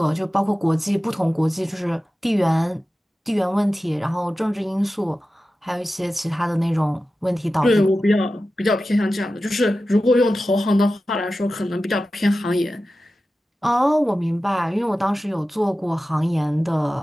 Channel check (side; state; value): both; normal; correlation 0.94